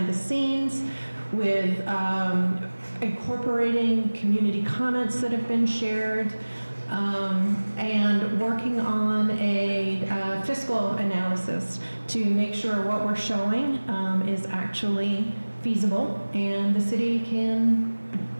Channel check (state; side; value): inverted; both; correlation -1.00